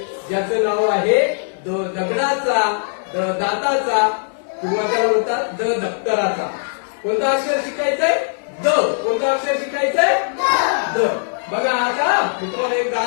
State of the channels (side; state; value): right; silent; 66 dB below the other